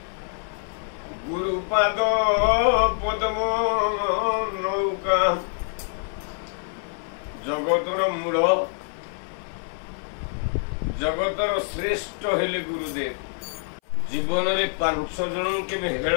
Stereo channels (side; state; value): right; silent; 59 dB below the other